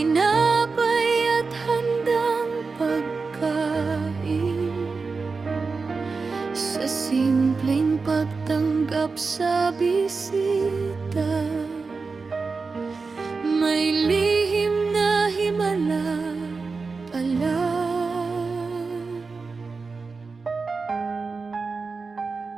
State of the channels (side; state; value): left; quieter; 4.4 dB